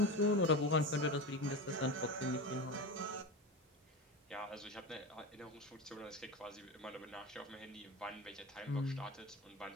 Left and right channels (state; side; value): normal; both; correlation 0.24